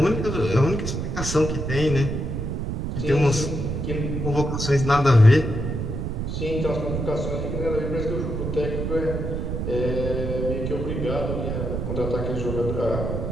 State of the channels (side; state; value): right; noise; rumble, 3 dB below the sound